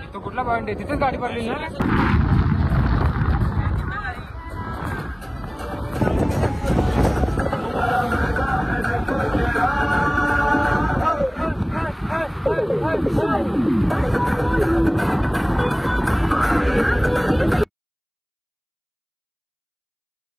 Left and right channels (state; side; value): identical; both; correlation 1.00